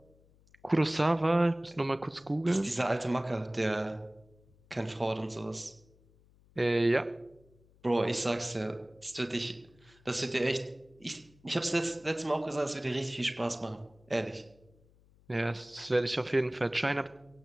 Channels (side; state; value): left; noise; hum, 29 dB below the sound